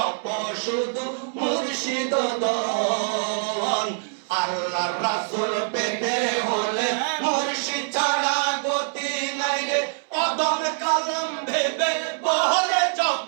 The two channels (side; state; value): left; silent; 62 dB below the other